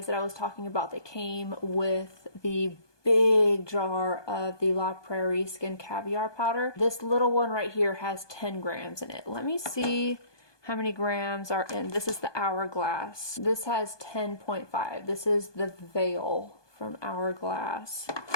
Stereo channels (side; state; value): right; late; 1.2 ms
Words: that I was talking about that came with the big jar of the La Prairie Skin Caviar powder. This little one right here has 10 grams in it. Let me see how many grams are in. This is the Hourglass. This has 10.5. This is the Veil from Hourglass.